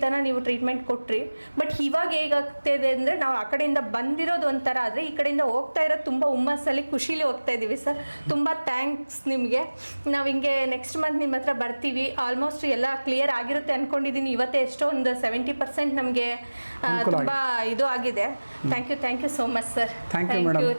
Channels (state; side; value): inverted; both; correlation -1.00